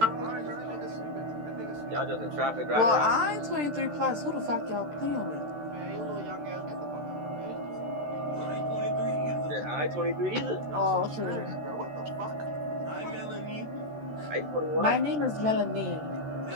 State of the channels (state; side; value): late; left; 13 ms